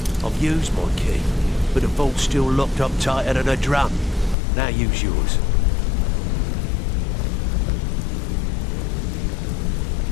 I've used my key, but the vault's still locked up tighter than a drum. Now use yours.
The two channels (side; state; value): right; drops out; at 4.4 s